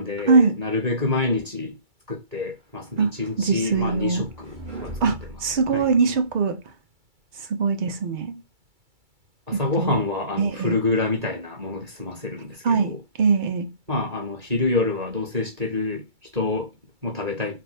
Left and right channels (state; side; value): late; left; 2.3 ms